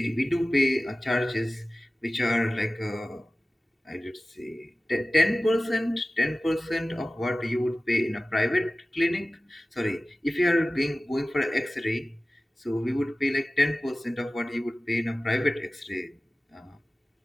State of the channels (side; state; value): both; normal; correlation 0.97